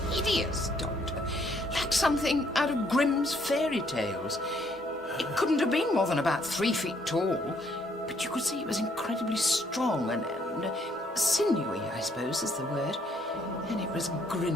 hideous, Doctor. Like something out of Grimm's fairy tales. It couldn't have been more than about 3 feet tall, but you could see it was incredibly strong and sinewy, I suppose is the word. And it was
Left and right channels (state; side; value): normal; both; correlation 0.68